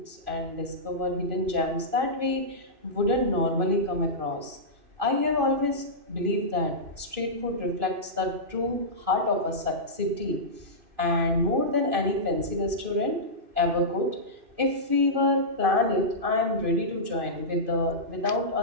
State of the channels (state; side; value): late; left; 2.5 ms